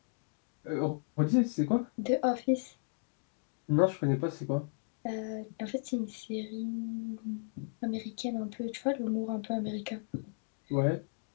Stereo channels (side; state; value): right; silent; digital silence